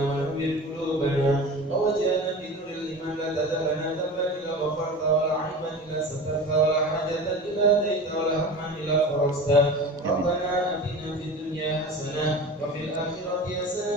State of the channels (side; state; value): both; normal; correlation 0.34